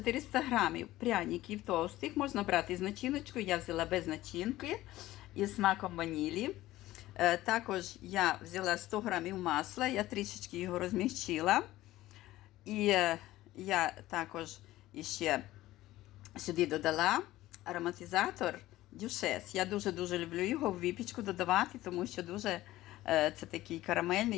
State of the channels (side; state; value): right; quieter; 16.2 dB